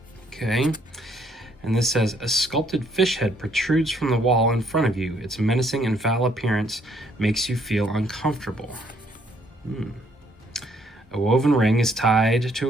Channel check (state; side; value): normal; both; correlation 0.67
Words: Okay. And this says, a sculpted fish head protrudes from the wall in front of you. Its menacing and foul appearance makes you feel uncomfortable. A woven ring is tied